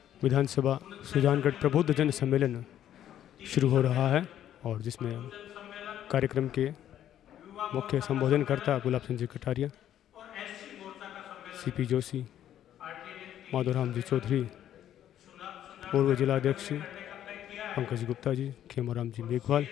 विधानसभा सुजानगढ़ प्रबुद्ध जन सम्मेलन शुरू हो रहा है और जिसमें कार्यक्रम के मुख्य संबोधनकर्ता गुलाब चंद जी कटारिया, सीपी जोशी, माधोराम जी चौधरी, पूर्व जिलाध्यक्ष पंकज गुप्ता जी, खेमाराम जी मेघवाल,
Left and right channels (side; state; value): right; quieter; 11.2 dB